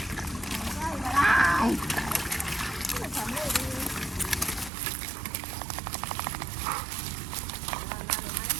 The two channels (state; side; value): drops out; left; at 4.7 s